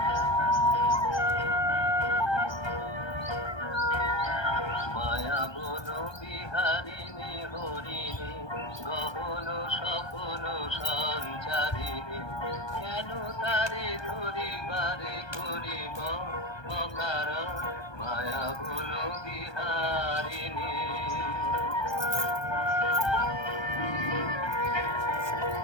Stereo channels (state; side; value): late; right; 1.2 ms